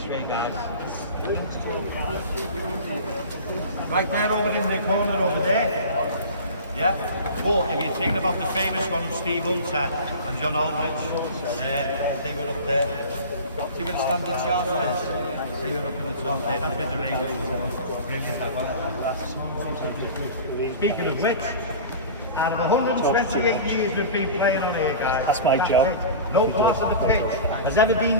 way, guys. Right there over in the corner over there. Yeah? But if you're thinking about the famous one of Steve Hunter and John Aldridge, they were up there. See where the standard charge is? They were up in the top there, that's with the radio. Brilliant, that one. Speaking of which, out of 128 years we've been playing on here, guys. That's my job. No part of the pitch has ever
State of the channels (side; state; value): both; inverted; correlation -0.35